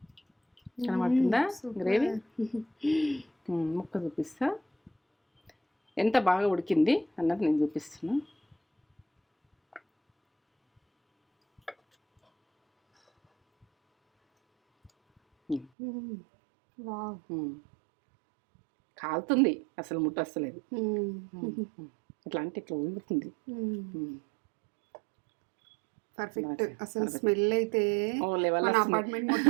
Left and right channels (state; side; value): drops out; left; at 15.7 s